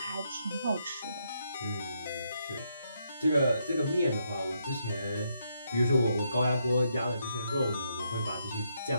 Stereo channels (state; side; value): inverted; both; correlation -0.77